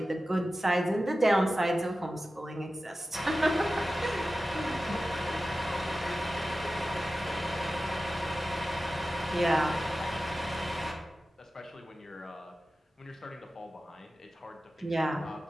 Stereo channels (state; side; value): normal; both; correlation 0.94